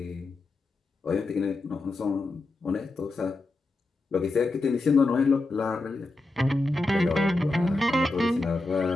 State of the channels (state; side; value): quieter; right; 3.1 dB